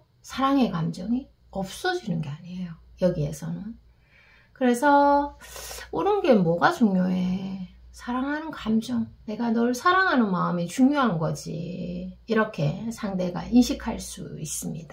사랑의 감정이 없어지는 게 아니에요. 여기에서는. 그래서 옳은 게 뭐가 중요해? 사랑하는 감정, 내가 널 사랑하는 마음이 중요한 거지. 이렇게 상대가 인식할 수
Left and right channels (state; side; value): identical; both; correlation 1.00